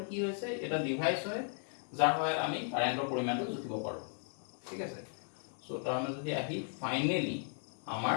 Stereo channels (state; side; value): silent; right; 54 dB below the other